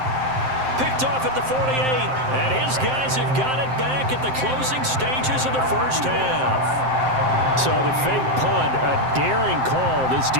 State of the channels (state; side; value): late; left; 7.7 ms